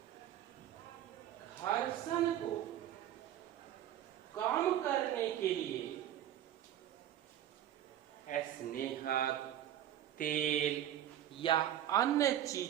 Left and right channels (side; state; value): left; quieter; 11.4 dB